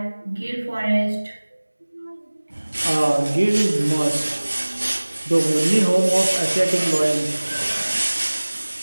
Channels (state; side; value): inverted; both; correlation -1.00